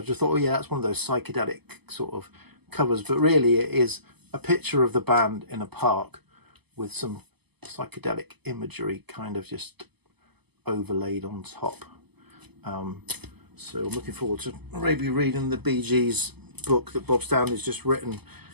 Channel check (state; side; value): late; left; 0.98 ms